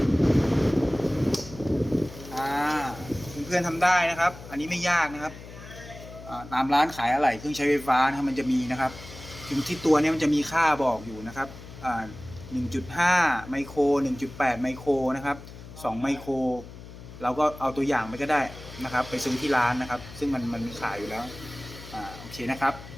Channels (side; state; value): left; noise; hum, 15 dB below the sound